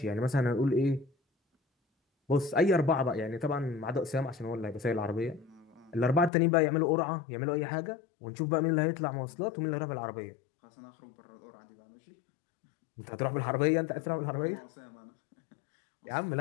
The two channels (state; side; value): drops out; right; at 6.3 s